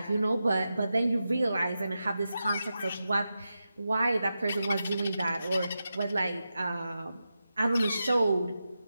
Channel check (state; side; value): inverted; both; correlation -0.90